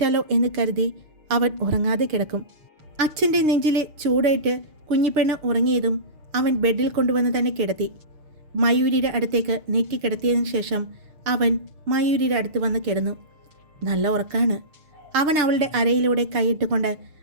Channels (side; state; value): left; late; 6.5 ms